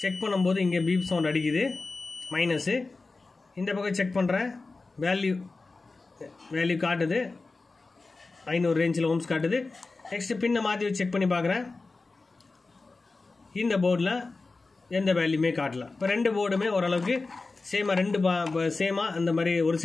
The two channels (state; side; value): quieter; right; 3.7 dB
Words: செக் பண்ணும்போது இங்கே பீப் சவுண்ட் அடிக்குது, மைனஸு. இந்த பக்கம் செக் பண்ணுறேன், வேல்யூ காட்டுது, 500 ரேஞ்சில் ஓம்ஸ் காட்டுது. நெக்ஸ்ட்டு பின்னை மாற்றி வச்சு செக் பண்ணி பார்க்குறேன். இந்த போர்டில் எந்த வேல்யூமே காட்டல. இப்போ ரெண்டு போர்டுமே ஓரளவுக்கு சேமாக, சேமாக அந்த மாதிரி ஒரு